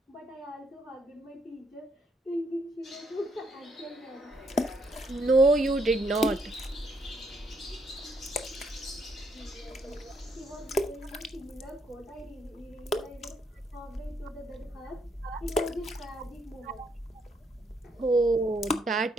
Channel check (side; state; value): both; normal; correlation 0.73